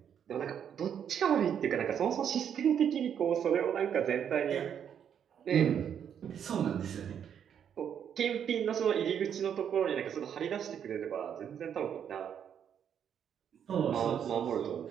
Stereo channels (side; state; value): left; quieter; 8.5 dB